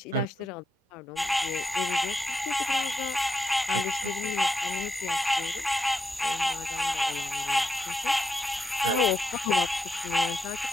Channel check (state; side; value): normal; both; correlation 0.84